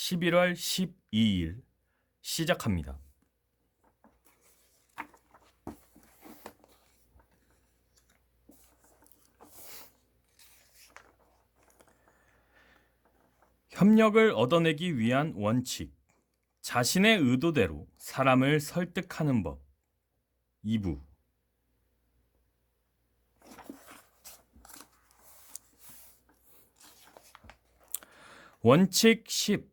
12일 시작합니다. 협력을 얻어내기 위한 원칙. 자신의 의도대로 사람을 설득하는 법. 2부. 원칙 10.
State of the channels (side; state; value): both; identical; correlation 1.00